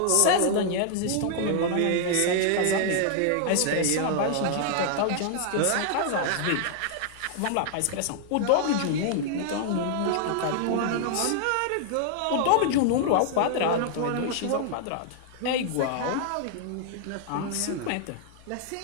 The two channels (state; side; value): different; both; correlation -0.01